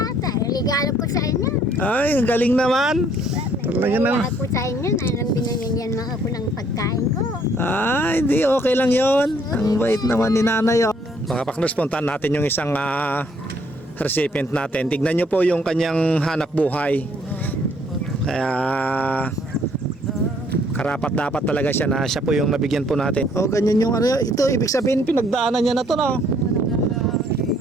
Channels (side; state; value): both; normal; correlation 0.64